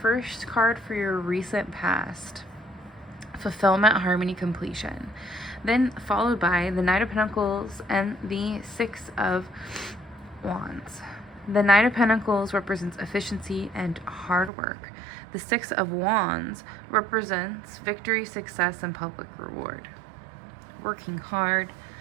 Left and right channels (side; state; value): left; drops out; at 14.5 s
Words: card for your recent past. Fulfillment, harmony, completion. Then followed by the Knight of Pentacles and the 6 of Wands. The Knight of Pentacles represents efficiency and hard work. The 6 of Wands represents victory, success, and public reward. Working hard,